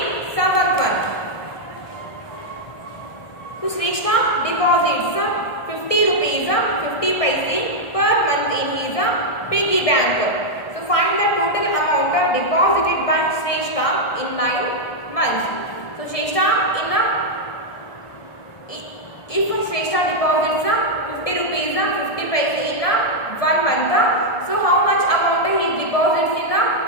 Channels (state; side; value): late; right; 1.6 ms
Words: seventh one. So Shrishna deposits 50 rupees 50 paise per month in his piggy bank. So find the total amount deposited by Shrishna in 9 months. So Shrishna if Shrestha deposits 50 rupees 50 paise in 1 month, so how much amount he deposits in